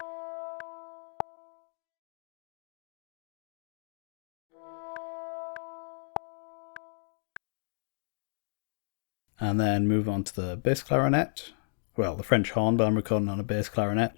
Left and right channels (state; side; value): silent; right; digital silence